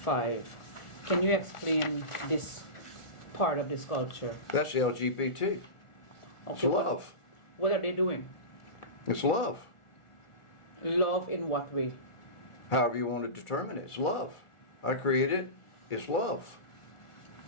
Can you explain this part of the sculpture? That's LGBT. It's Okay, love. What are they doing? It's love. Love in what way? However you want to determine it, it's love. I created it, it's love.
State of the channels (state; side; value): late; right; 1.4 ms